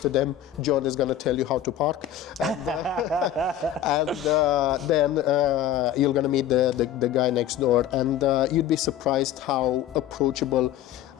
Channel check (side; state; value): right; quieter; 10.7 dB